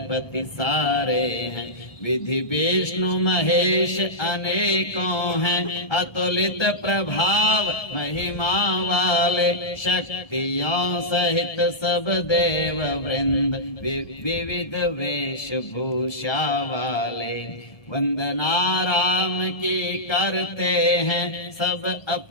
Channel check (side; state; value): right; late; 1.3 ms